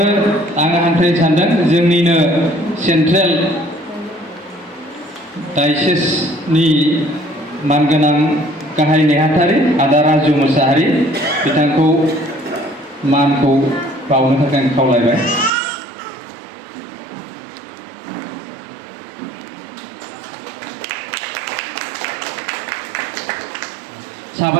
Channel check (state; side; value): drops out; left; at 15.5 s